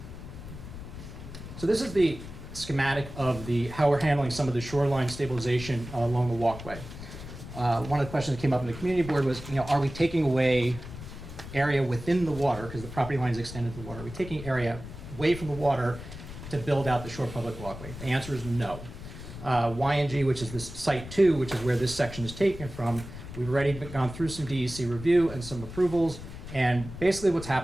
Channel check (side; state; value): left; noise; rumble, 12 dB below the sound